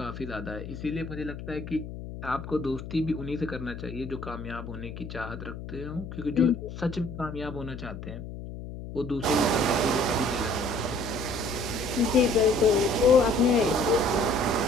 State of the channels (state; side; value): noise; left; hum, 10 dB below the sound